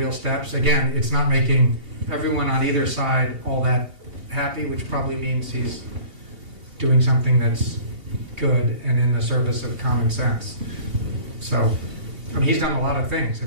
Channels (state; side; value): late; left; 2.8 ms